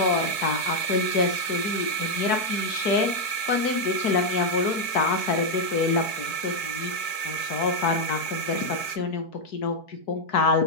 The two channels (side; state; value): right; late; 4.6 ms